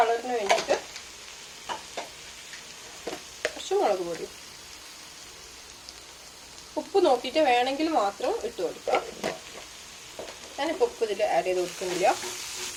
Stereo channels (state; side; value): identical; both; correlation 1.00